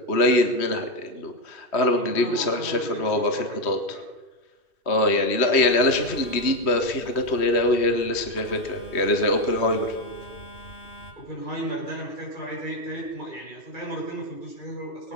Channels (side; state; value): right; late; 3.1 ms